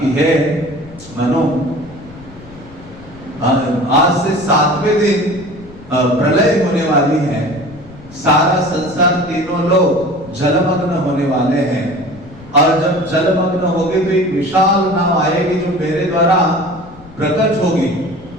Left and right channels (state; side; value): noise; left; rumble, 20 dB below the sound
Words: हे मनु, आज से 7वें दिन प्रलय होने वाली है, सारा संसार, तीनों लोग जलमग्न होने वाले हैं, और जब जलमग्न होगी तो एक विशाल नाव आएगी जो मेरे द्वारा प्रकट होगी।